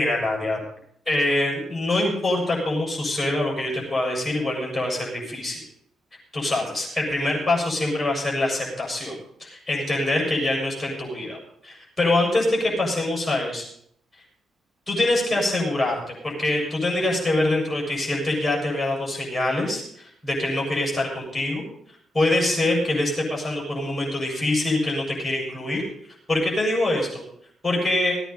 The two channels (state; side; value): normal; both; correlation 0.86